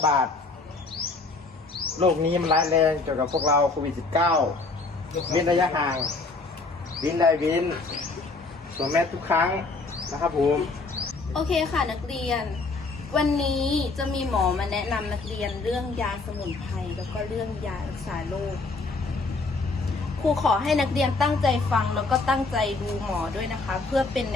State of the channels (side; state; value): right; quieter; 3.7 dB